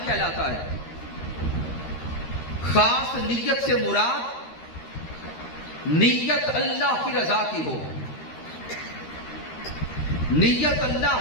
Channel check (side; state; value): right; late; 13 ms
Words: کہلاتا ہے۔ خاص نیت سے مراد نیت اللہ کی رضا کی ہو، نیت اللہ